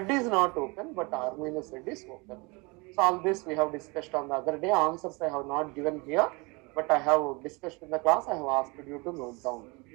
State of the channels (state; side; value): quieter; left; 27.5 dB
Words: is not open, but R minus Z is open. So all this we have discussed on the other day. Answers I have not given here, but I have discussed in the class. I have asked you to note down.